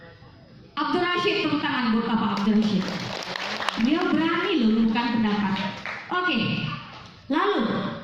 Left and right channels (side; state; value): both; identical; correlation 1.00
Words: Abdul Rashid, tepuk tangan buat Bapak Abdul Rashid. Dia berani loh bukan pendapat. Oke. Lalu,